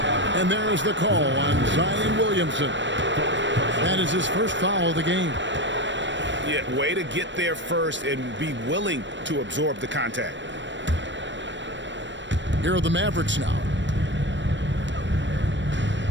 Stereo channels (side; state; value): left; late; 0.53 ms